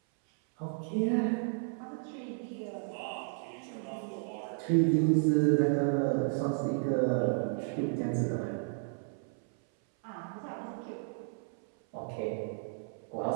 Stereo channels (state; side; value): silent; left; 56 dB below the other